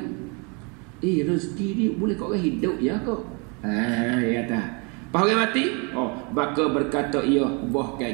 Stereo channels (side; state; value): left; quieter; 32.7 dB